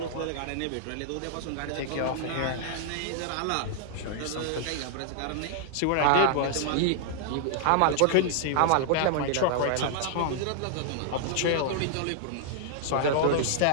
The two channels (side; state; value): both; different; correlation -0.01